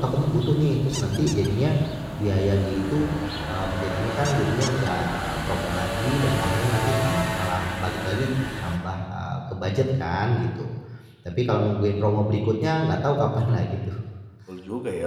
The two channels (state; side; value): identical; both; correlation 1.00